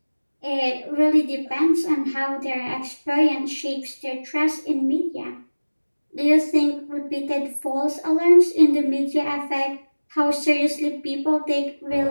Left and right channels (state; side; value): inverted; both; correlation -1.00